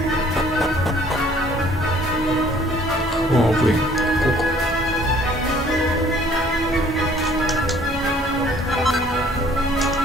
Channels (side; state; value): both; normal; correlation 0.58